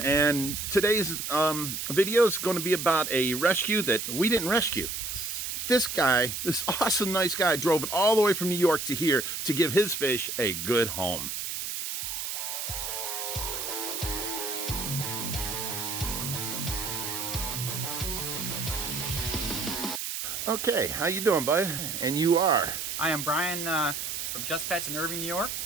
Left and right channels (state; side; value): noise; right; hiss, 4 dB below the sound